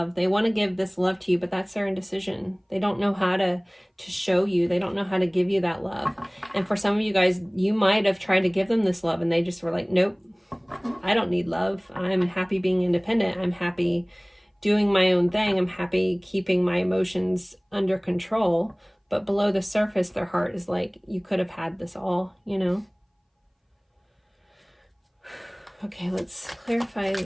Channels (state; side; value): identical; both; correlation 1.00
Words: They want to give this love to you, but that's their indecision. They don't know how to show you. They don't know how to give you that love. And for some of you guys, you might have tried to give them this love and they just were like, nope, I don't need love. I'm happy being independent. I'm happy doing my own thing. I'm happy keeping my emotions under control. But below the surface, their heart is like, you could have had this all, you know? Okay, let's clarify